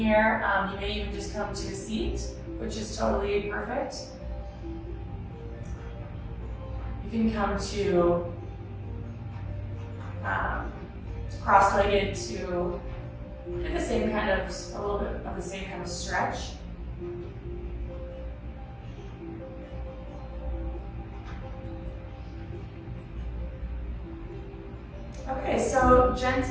You may even just come to a seat, which is totally perfect. You can come to cross-legged to do the same kind of, a little bit of the same kind of stretch. Okay, so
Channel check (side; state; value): both; identical; correlation 1.00